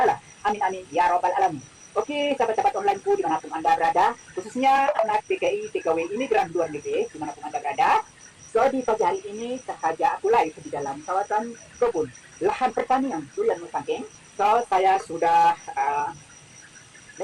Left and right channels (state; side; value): identical; both; correlation 1.00